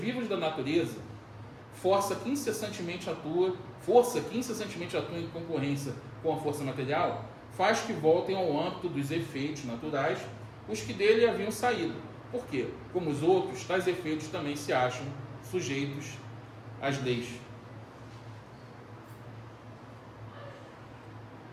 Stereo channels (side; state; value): both; identical; correlation 1.00